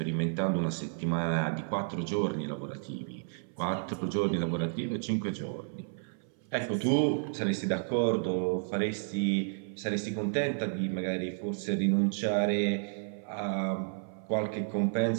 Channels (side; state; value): left; silent; 57 dB below the other